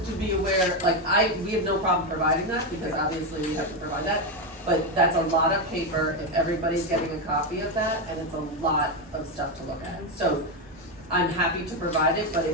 to be aware, like we have no problem providing that, because obviously we have to provide that. But that's a lot of paper if everybody's getting a copy of that, and it's a lot of stuff to look at. So I'm happy to provide it, but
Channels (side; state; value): both; normal; correlation 0.09